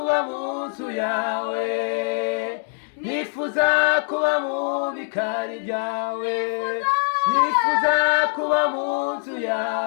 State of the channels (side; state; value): right; silent; digital silence